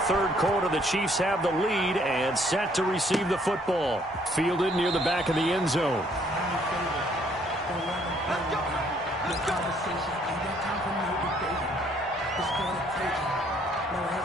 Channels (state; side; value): normal; both; correlation 0.65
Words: 3rd quarter. The Chiefs have the lead and set to receive the football. Fielded near the back of the end zone.